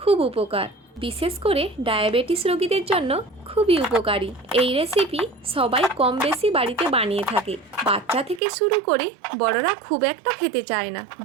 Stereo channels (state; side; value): drops out; left; at 8.4 s